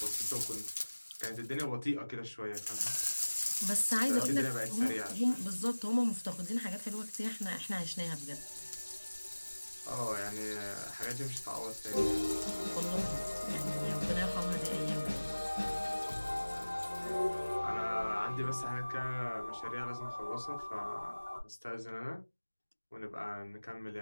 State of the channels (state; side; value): inverted; both; correlation -1.00